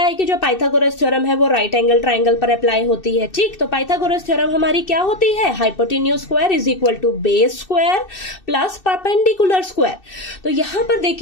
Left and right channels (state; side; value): late; right; 2.6 ms